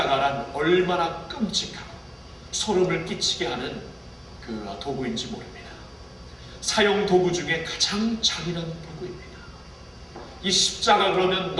얼마나 끔찍하고 소름을 끼치게 하는 그 도구인지 모릅니다. 사용 도구 중에 가장 잔인한 도구입니다. 이 십자가 그러면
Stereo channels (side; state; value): both; identical; correlation 1.00